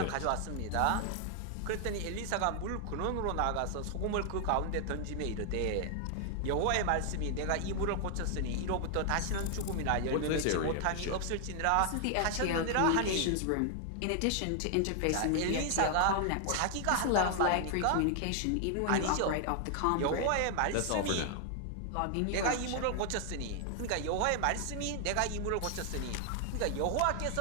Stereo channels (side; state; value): both; different; correlation 0.00